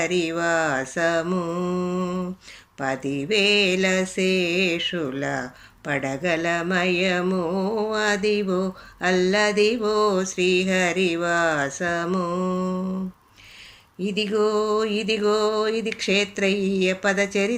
10,000 శేషుల పడగలమయము, అదివో అల్లదివో శ్రీహరివాసము. ఇదిగో ఇదిగో ఇది క్షేత్రయ్య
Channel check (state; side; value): identical; both; correlation 1.00